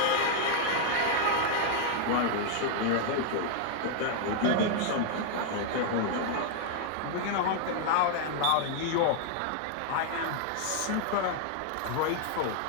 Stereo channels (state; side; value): different; both; correlation 0.00